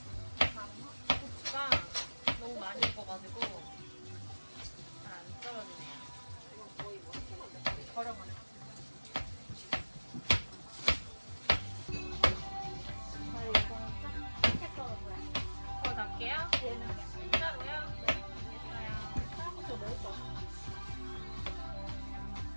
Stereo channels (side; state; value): both; inverted; correlation -1.00